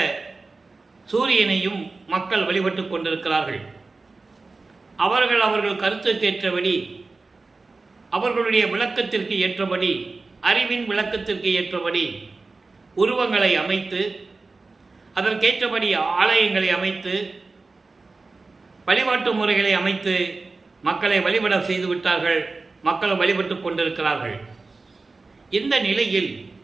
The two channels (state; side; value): quieter; left; 3.7 dB